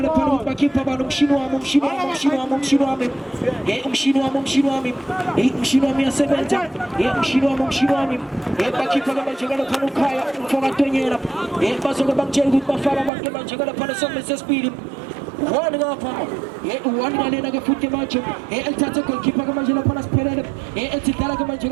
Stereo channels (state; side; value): drops out; left; at 13.1 s